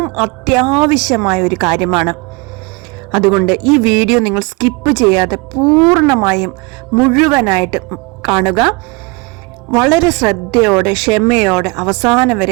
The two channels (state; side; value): quieter; left; 27.6 dB